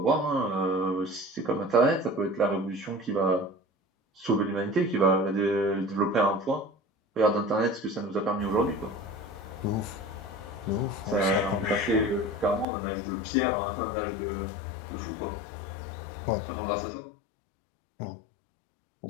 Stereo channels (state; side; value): drops out; right; at 12.7 s